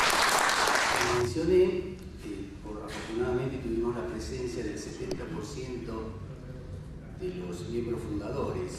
Mencioné que afortunadamente tuvimos la presencia del 70% de los miembros fundadores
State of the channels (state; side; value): identical; both; correlation 1.00